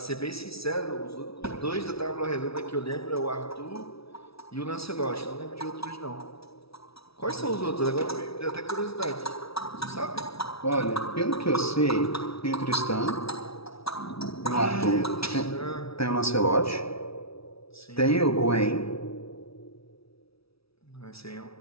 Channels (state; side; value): late; right; 0.76 ms